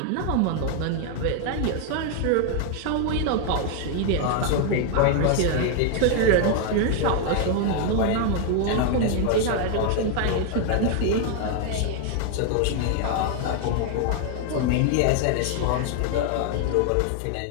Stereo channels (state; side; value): different; both; correlation 0.00